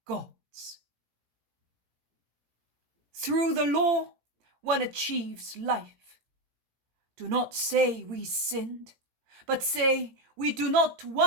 God's. Through the law, one achieves life. Do not say we sinned, but say we do not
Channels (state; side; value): late; left; 18 ms